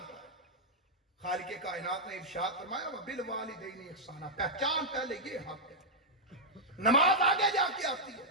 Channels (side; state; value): both; normal; correlation -0.06